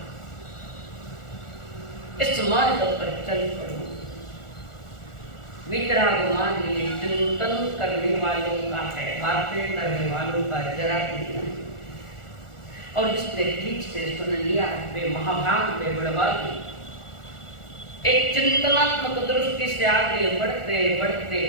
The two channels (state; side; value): late; right; 1.4 ms